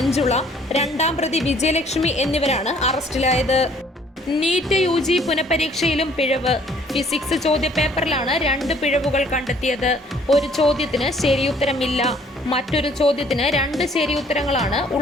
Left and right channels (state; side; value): normal; both; correlation 0.59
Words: 2-ാം പ്രതി വിജയലക്ഷ്മി എന്നിവരാണ് അറസ്റ്റിലായത്. നീറ്റ് UG പുനഃപരീക്ഷയിലും പിഴവ്. ഫിസിക്സ് ചോദ്യപേപ്പറിലാണ് 2 പിഴവുകൾ കണ്ടെത്തിയത്. ഒരു ചോദ്യത്തിന് ശരിയുത്തരമില്ല. മറ്റൊരു ചോദ്യത്തിന് 2 ശരിയുത്തരങ്ങളാണ്